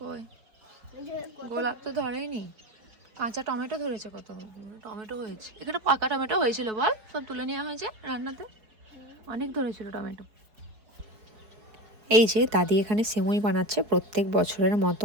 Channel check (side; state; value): left; late; 4.7 ms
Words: গোলাপ তো ধরেইনি, কাঁচা টমেটো ধরেছে, কত টমেটো হয়েছে। এখানে পাকা টমেটো হয়েছিল, বল সব তুলে নেওয়া হয়েছে রান্নাতে, অনেক ধরেছিল টমেটো। এই যে দাদি এখানে সিমুই বানাচ্ছে প্রত্যেক বছরের মতো,